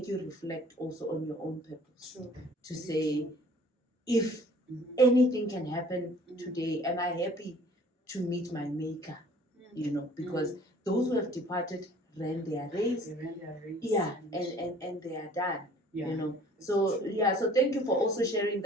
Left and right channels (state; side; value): normal; both; correlation 0.52